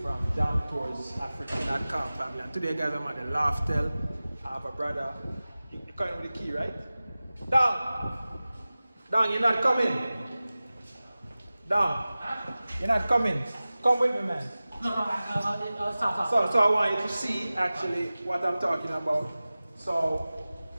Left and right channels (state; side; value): inverted; both; correlation -0.97